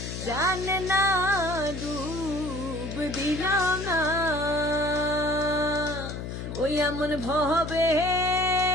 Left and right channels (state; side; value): noise; left; hum, 7 dB below the sound